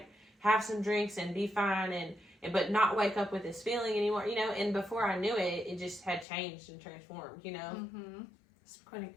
have some drinks and be fine and but not wake up with this feeling anymore, and before I knew it, it just had changed and transformed, It's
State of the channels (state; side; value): drops out; right; at 6.2 s